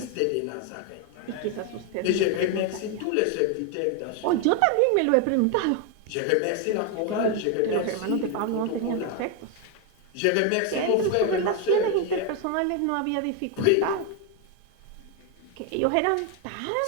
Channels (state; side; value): different; both; correlation 0.01